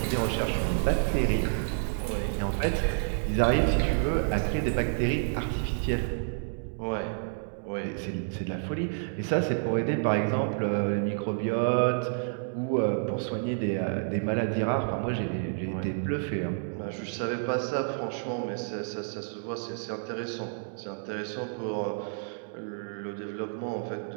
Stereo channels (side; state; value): left; silent; digital silence